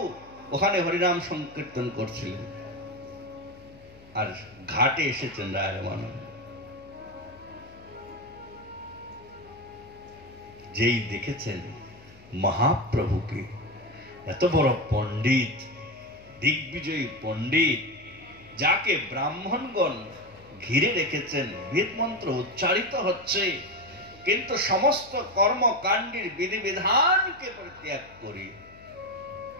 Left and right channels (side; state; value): left; noise; hum, 24 dB below the sound